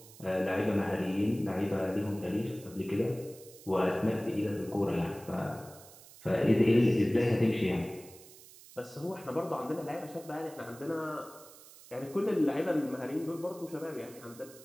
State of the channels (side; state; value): right; noise; hiss, 20 dB below the sound